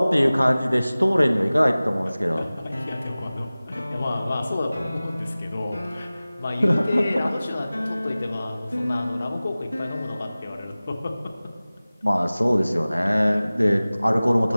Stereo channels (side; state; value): both; inverted; correlation -0.98